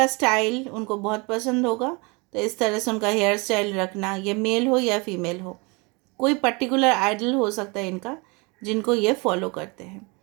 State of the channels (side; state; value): left; quieter; 28.7 dB